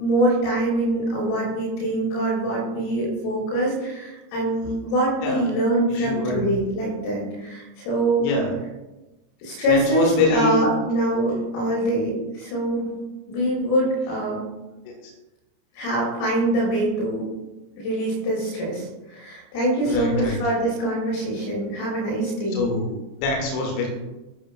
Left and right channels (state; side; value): late; right; 30 ms